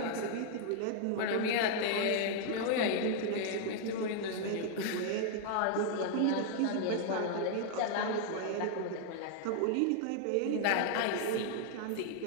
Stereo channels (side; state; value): both; different; correlation 0.00